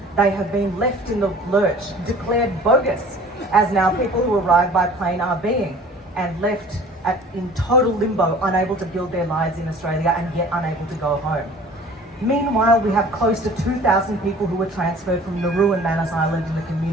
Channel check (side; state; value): both; normal; correlation 0.47